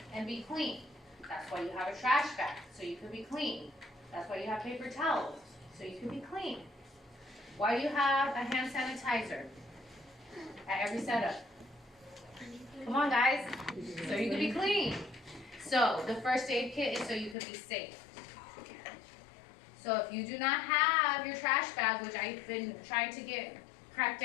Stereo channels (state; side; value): drops out; right; at 17.4 s